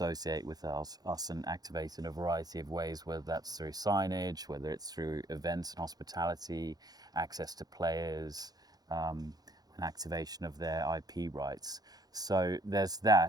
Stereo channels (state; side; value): late; left; 0.19 ms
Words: with us and activate in a variety of ways, whether that's through signage, whether it's through events and hospitality, access to players, and activation of their IP rights. So there's